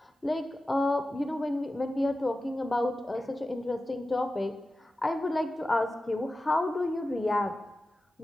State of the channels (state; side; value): normal; both; correlation 0.94